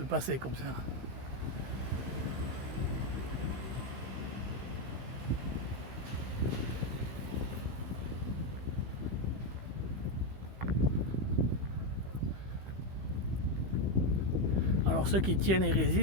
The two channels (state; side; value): late; left; 15 ms